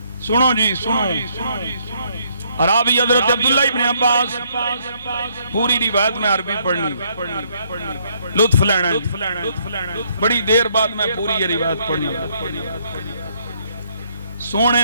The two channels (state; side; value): inverted; both; correlation -0.70